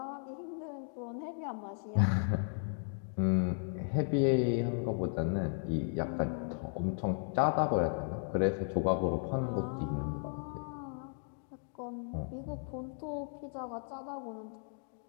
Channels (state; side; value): silent; right; 54 dB below the other